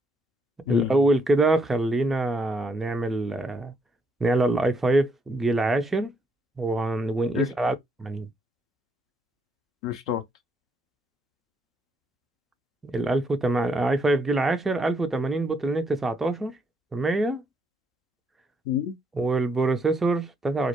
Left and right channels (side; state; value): both; normal; correlation 0.73